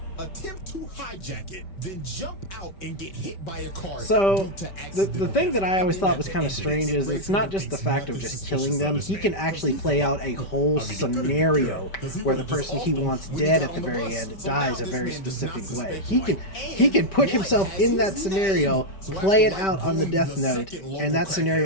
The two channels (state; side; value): late; right; 5.1 ms